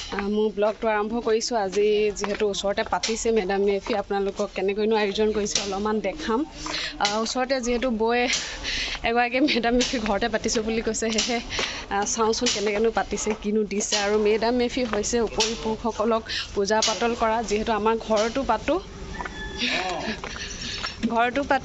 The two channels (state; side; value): identical; both; correlation 1.00